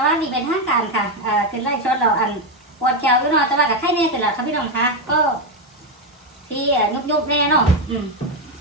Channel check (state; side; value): normal; both; correlation 0.07